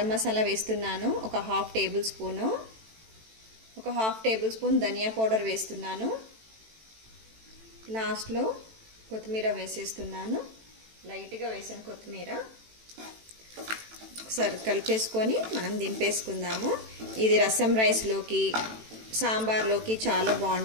మసాలా వేస్తున్నాను, ఒక ½ టేబుల్ స్పూను. ఒక ½ టేబుల్ స్పూన్ ధనియా పౌడర్ వేస్తున్నాను. లాస్ట్లో కొత్తిమీర వేసేస్తున్నాను, లైట్గా వేసాను కొత్తిమీర. ఒకసారి కలిపేసుకొని మనం దింపేసుకుందాము. ఇది రసం రైస్లోకి, సాంబార్లోకి చాలా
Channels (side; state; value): left; late; 18 ms